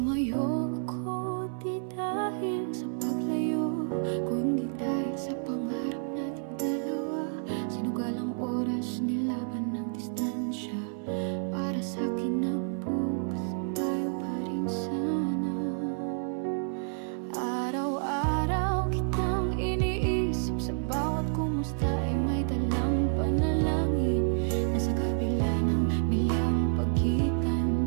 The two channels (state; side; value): silent; left; 58 dB below the other